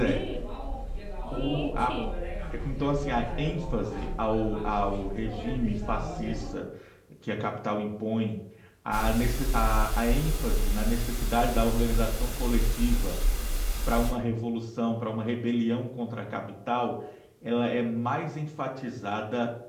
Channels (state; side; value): identical; both; correlation 1.00